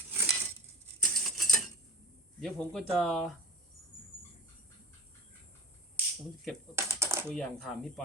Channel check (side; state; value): both; normal; correlation 0.31